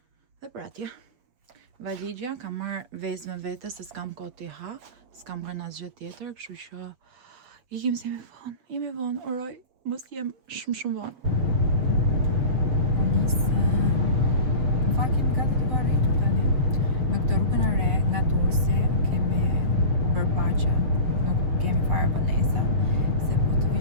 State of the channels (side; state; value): left; late; 7.7 ms